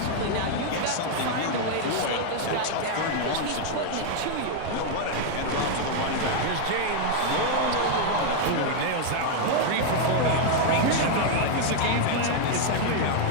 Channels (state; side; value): different; both; correlation 0.00